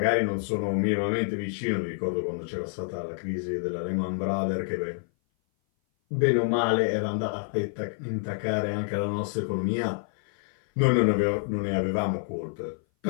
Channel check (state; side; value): silent; right; 57 dB below the other